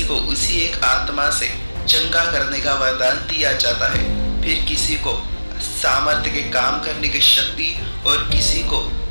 को उसी एक आत्मा से चंगा करने का वरदान दिया जाता है। फिर किसी को सामर्थ्य के काम करने की शक्ति और किसी को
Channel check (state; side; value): inverted; both; correlation -1.00